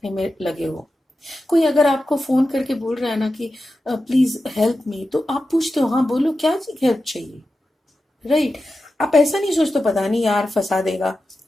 में लगे हो। कोई अगर आपको फोन करके बोल रहा है ना कि प्लीज हेल्प मी, तो आप पूछते हो हाँ बोलो क्या हेल्प चाहिए, राइट। आप ऐसा नहीं सोचते पता नहीं यार फंसा देगा,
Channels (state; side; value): normal; both; correlation 0.92